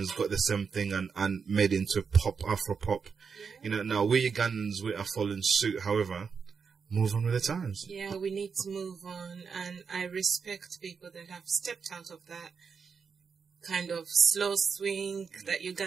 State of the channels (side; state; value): left; quieter; 5.9 dB